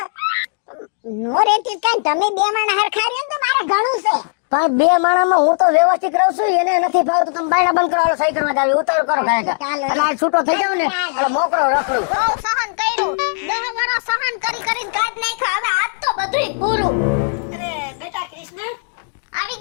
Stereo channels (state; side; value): silent; right; digital silence